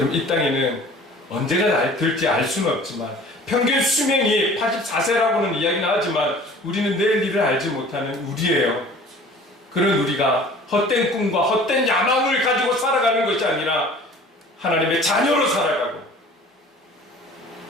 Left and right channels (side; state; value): both; normal; correlation 0.47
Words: 이 땅에는 언제가 될지 알 수는 없지만, 평균 수명이 84세라고는 이야기는 하지만 우리는 내일 일을 알지 못하는 우리예요. 그런 우리가 헛된 꿈과 헛된 야망을 가지고 살아가는 것이 아니라 하나님의 자녀로 살아가고